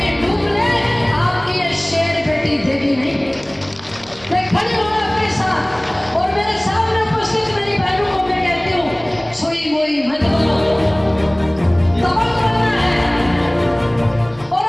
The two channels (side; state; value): left; noise; hum, 25 dB below the sound